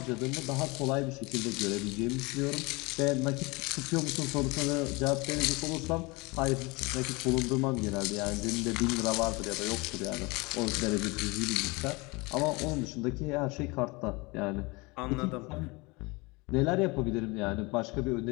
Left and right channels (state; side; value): quieter; right; 25.7 dB